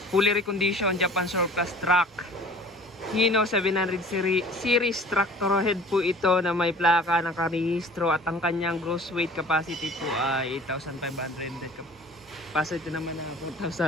fully reconditioned Japan Surplus truck. Hino 700 series tractor head po ito na may plaka, nakarehistro, at ang kanyang gross weight capacity po ay 8,500. Capacity naman na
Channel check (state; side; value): normal; both; correlation 0.47